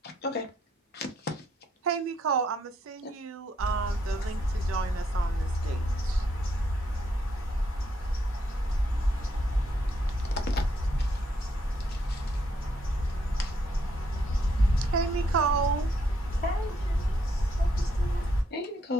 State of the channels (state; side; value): normal; both; correlation 0.74